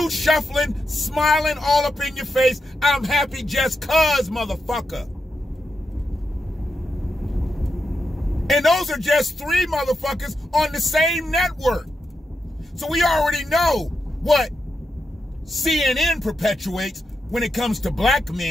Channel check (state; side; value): normal; both; correlation 0.86